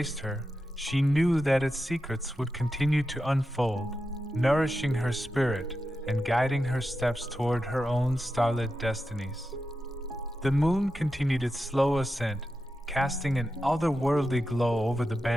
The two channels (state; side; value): normal; both; correlation 0.90